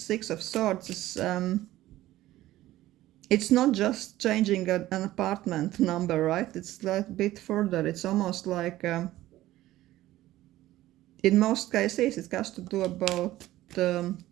of Swords is... it's not just changing an apartment number, right? It's a bit further. It's almost like, in most cases, it has to do about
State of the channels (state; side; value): quieter; left; 15.5 dB